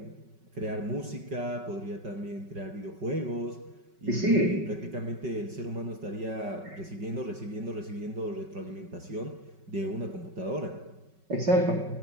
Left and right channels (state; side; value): late; left; 5.3 ms